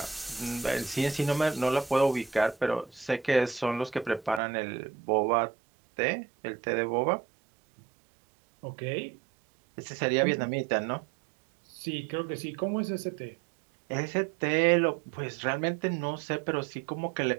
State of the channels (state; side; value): drops out; left; at 4.4 s